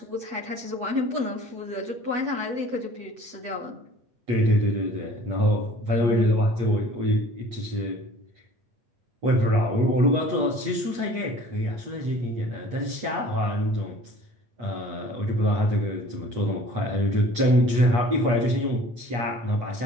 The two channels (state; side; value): late; left; 8.3 ms